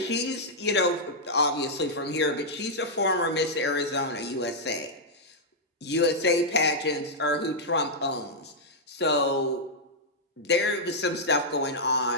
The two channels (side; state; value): both; normal; correlation -0.07